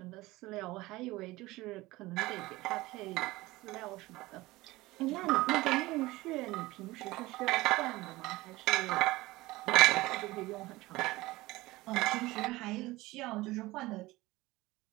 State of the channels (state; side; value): quieter; left; 19.6 dB